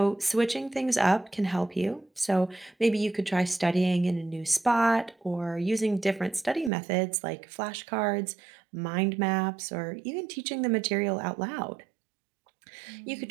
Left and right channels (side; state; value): left; drops out; at 6.7 s